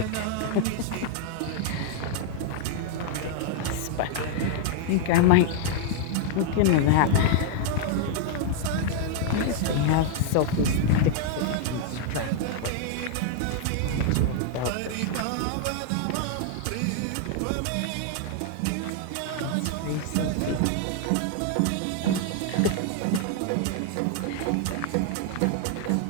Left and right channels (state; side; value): different; both; correlation 0.00